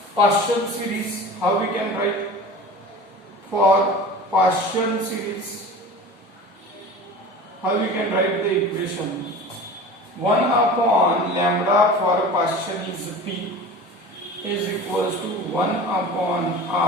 Paston series, how we can write? For Paston series, how we can write the equation? 1 upon lambda for Paston is p is equals to 1 upon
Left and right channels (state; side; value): normal; both; correlation 0.36